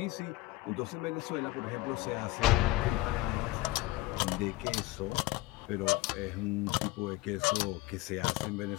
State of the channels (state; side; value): quieter; right; 18.4 dB